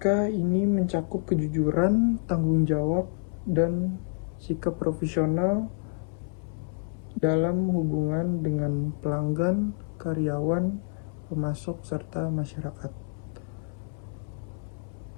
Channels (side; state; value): right; silent; 59 dB below the other